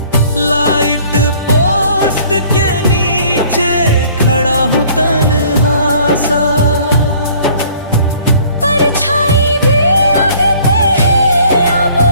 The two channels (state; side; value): inverted; both; correlation -0.55